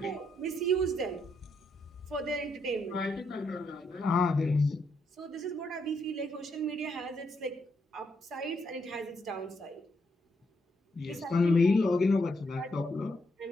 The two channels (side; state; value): both; normal; correlation 0.77